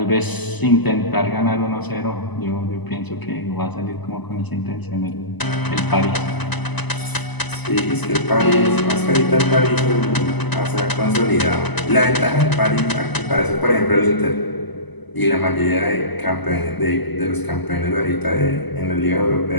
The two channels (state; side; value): late; right; 1.0 ms